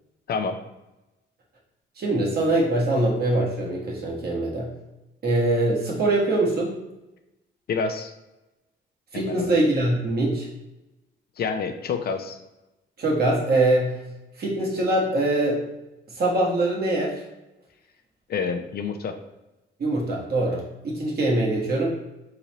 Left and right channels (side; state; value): both; normal; correlation 0.51